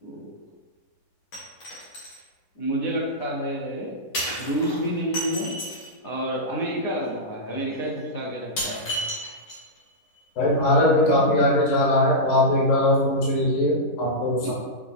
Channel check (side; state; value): right; late; 10 ms